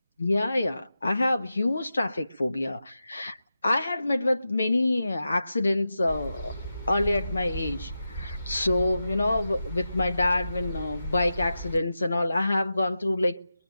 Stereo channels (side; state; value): both; inverted; correlation -0.91